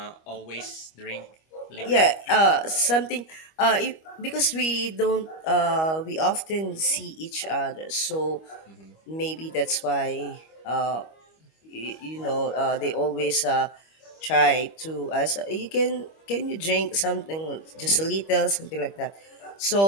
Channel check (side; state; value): right; late; 25 ms